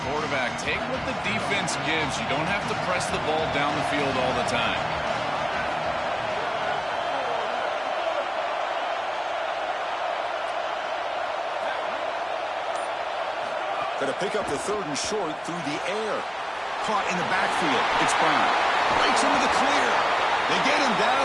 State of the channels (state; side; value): identical; both; correlation 1.00